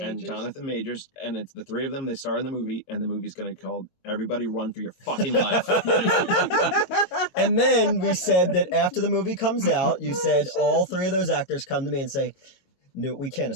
Majors, and it's the three of them. They star in the movie, and the movie's going to be called "Everybody Run for Your Fucking Life." And then we said that after the movie comes out, you said all three of those actors come to me and say, "No, we can't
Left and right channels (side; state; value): right; late; 22 ms